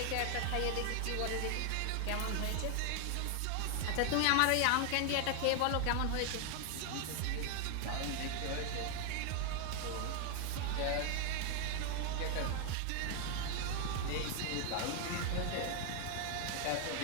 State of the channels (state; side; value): different; both; correlation 0.00